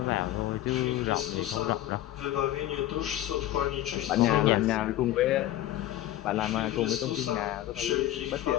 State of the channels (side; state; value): right; quieter; 13.8 dB